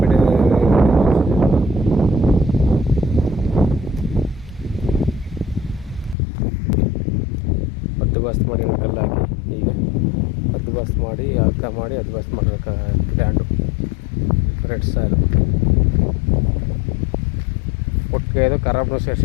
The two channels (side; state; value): right; drops out; at 6.2 s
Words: ಬಸ್ತ್ ಮಾಡಿ ಕಲ್ಲು ಹಾಕಿ ಈಗ ಬಸ್ತ್ ಮಾಡಿ ಅಳ್ಕ ಮಾಡಿ ಬಸ್ತ್ ಮಾಡಿರೋ ಲ್ಯಾಂಡು ರೆಡ್ ಸಾಯಿಲು. ಒಟ್ಟಿಗೆ ಇದು ಖರಾಬ್ನು